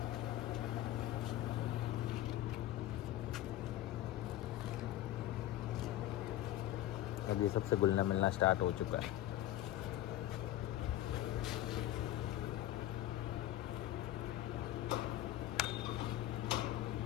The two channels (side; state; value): right; quieter; 13.4 dB